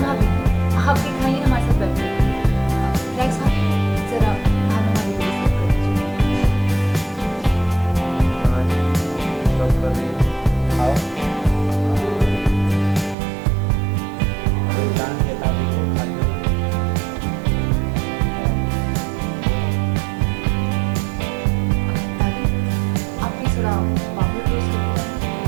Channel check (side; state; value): left; drops out; at 13.2 s